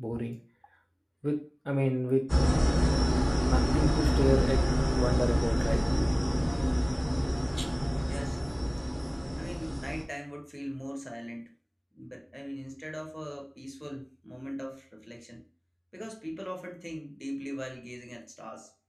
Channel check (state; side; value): identical; both; correlation 1.00